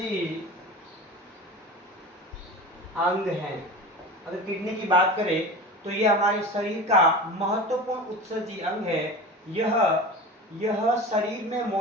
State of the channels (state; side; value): normal; both; correlation 0.31